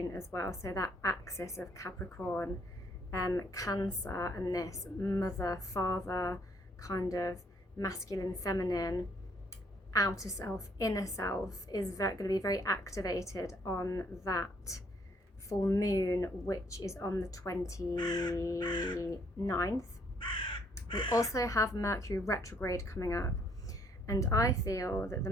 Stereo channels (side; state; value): both; normal; correlation 0.67